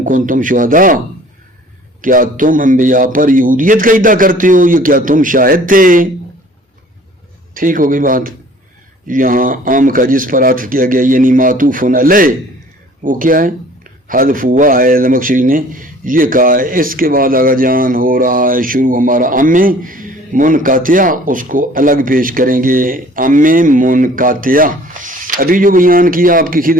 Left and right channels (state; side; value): normal; both; correlation 0.51